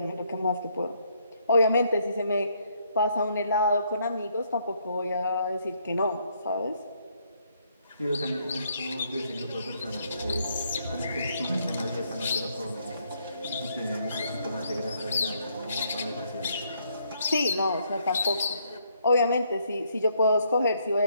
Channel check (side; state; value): both; inverted; correlation -0.71